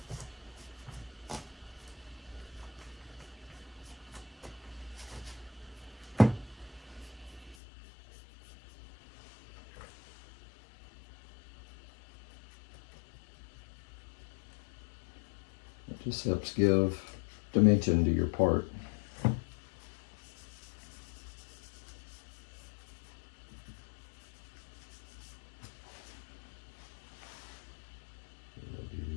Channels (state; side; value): drops out; right; at 7.6 s